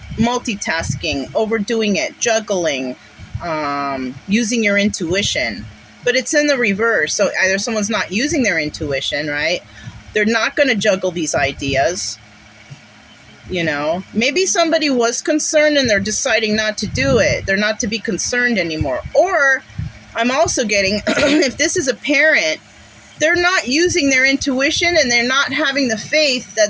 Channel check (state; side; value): identical; both; correlation 1.00